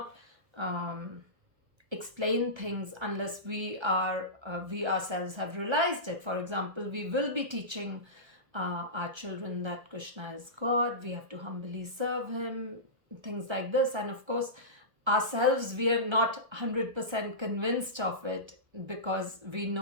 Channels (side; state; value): left; late; 1.3 ms